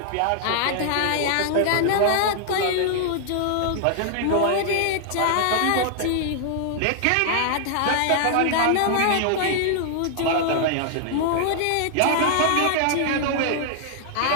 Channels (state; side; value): different; both; correlation 0.00